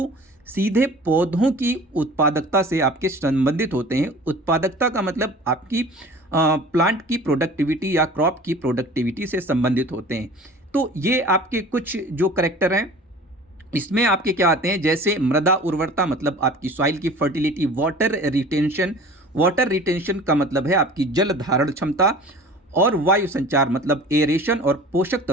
सीधे पौधों की उत्पादकता से आपके संबंधित होते हैं। उत्पादकता का मतलब आपकी प्लांट की प्रोडक्टिविटी या क्रॉप की प्रोडक्टिविटी से संबंधित होते हैं। तो ये आपके कुछ जो करैक्टर हैं, इसमें आपके क्या आते हैं, जैसे मृदा उर्वरता मतलब आपकी सॉइल की fertility, water retention, water retention का मतलब है आपकी जल धारण क्षमता, और वायु संचार मतलब एरेशन और पोषक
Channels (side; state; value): both; normal; correlation 0.43